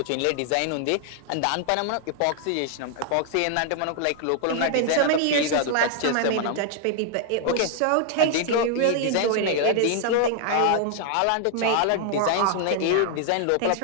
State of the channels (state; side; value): different; both; correlation 0.00